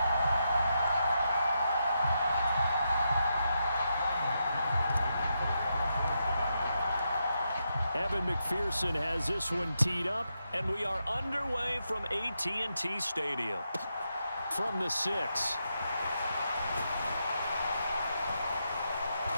Evan McPherson has this one teed up, and we are underway from AT&T Stadium. From the 6.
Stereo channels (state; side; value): inverted; both; correlation -0.84